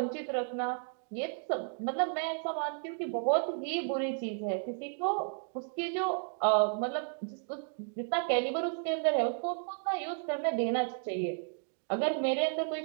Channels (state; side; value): silent; left; 56 dB below the other